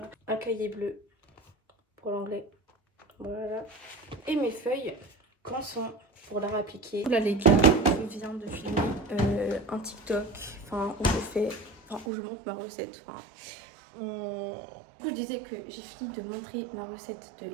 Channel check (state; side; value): drops out; left; at 12.1 s